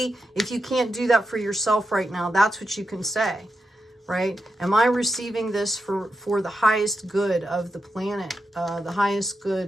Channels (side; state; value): both; normal; correlation 0.87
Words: if you can't do that for yourself right now, that's what you can say, right? Am I receiving this for the highest good of the planet, the highest